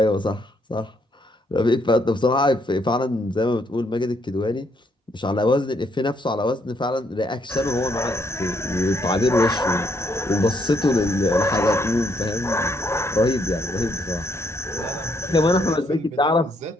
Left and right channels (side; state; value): both; normal; correlation 0.72